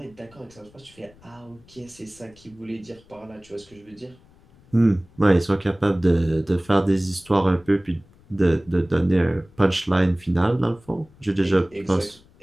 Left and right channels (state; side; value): noise; left; rumble, 28 dB below the sound